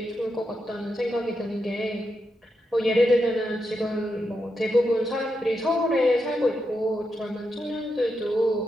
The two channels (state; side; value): normal; both; correlation 0.85